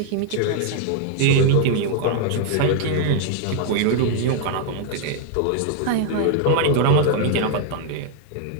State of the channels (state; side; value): different; both; correlation 0.00